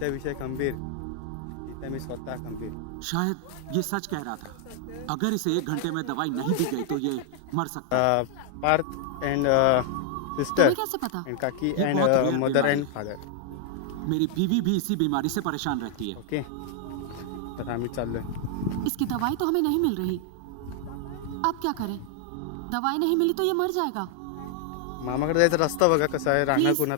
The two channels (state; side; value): different; both; correlation 0.00